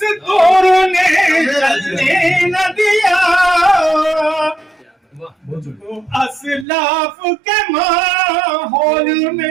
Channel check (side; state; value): left; drops out; at 6.7 s